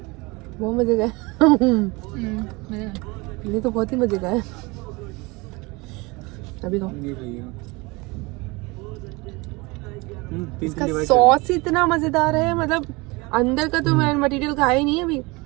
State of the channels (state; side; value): quieter; left; 25.2 dB